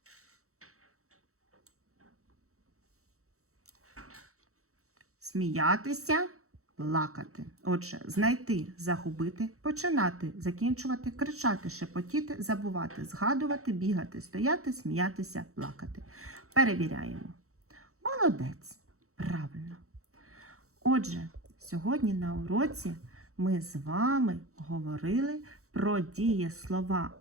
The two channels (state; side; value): late; left; 0.64 ms